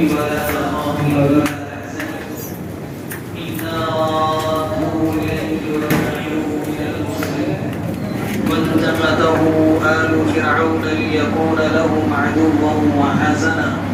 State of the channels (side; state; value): both; identical; correlation 1.00